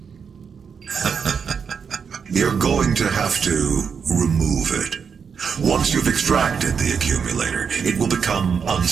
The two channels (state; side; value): quieter; left; 6.5 dB